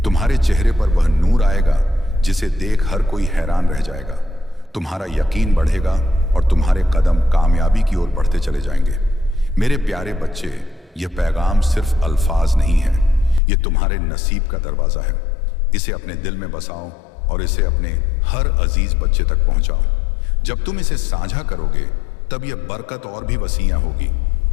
तुम्हारे चेहरे पर वह नूर आएगा जिसे देख हर कोई हैरान रह जाएगा। तुम्हारा यकीन बढ़ेगा और तुम्हारे कदम कामयाबी की ओर बढ़ते चले जाएंगे। मेरे प्यारे बच्चे, यह पैगाम सिर्फ अल्फाज नहीं है, यह तुम्हारे नसीब का दरवाजा है। इसे अपने दिल में बसाओ और इसे अपने हर अजीज बच्चे तक पहुंचाओ। जब तुम इसे साझा करोगे तब यह बरकत और भी वसीया होगी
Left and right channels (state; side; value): drops out; right; at 13.4 s